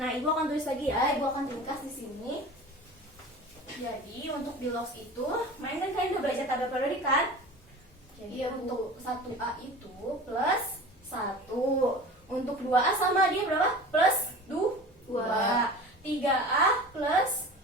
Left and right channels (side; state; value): both; normal; correlation 0.37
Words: Ibu akan tulis lagi ya. Ibu akan ringkas di sini. Jadi, untuk bilox itu, main kan kalian udah belajar tabel periodik kan? Jadi, untuk 1A itu plus 1. Untuk 2A sama dia berapa? Plus 2. 3A plus